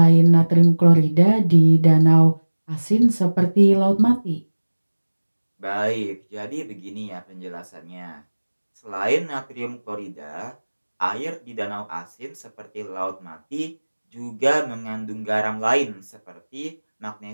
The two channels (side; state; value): both; inverted; correlation -1.00